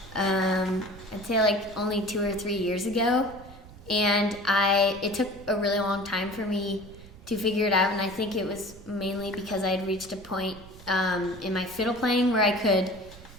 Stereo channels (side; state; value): right; noise; rumble, 19 dB below the sound